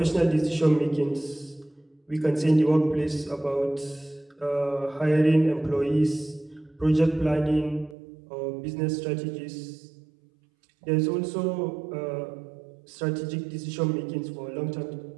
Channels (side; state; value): left; drops out; at 8.0 s